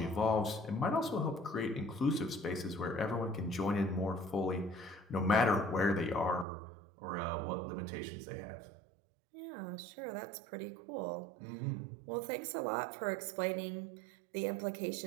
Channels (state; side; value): drops out; left; at 6.5 s